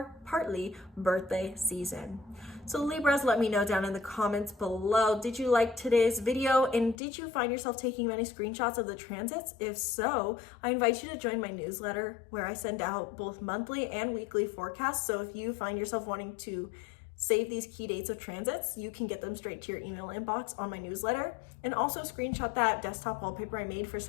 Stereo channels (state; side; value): drops out; right; at 7.0 s